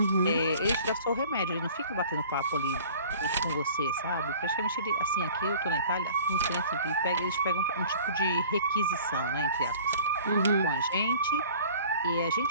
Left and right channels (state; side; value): inverted; both; correlation -0.47